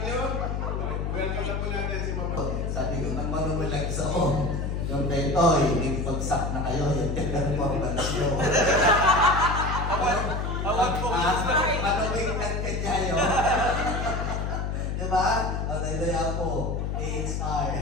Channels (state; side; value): noise; left; hum, 2 dB below the sound